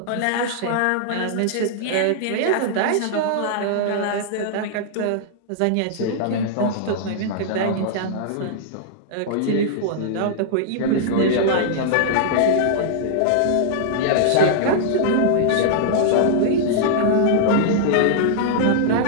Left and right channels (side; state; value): both; different; correlation -0.01